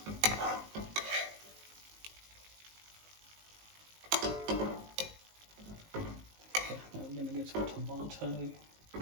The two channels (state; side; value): late; left; 19 ms